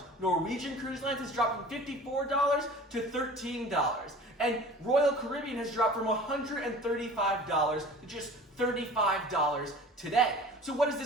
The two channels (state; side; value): normal; both; correlation 0.42